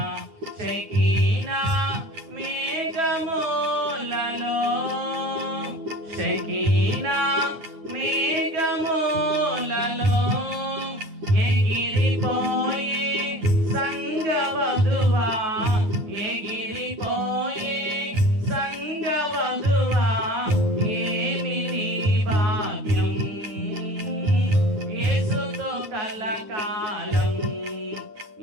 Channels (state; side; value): late; left; 9.5 ms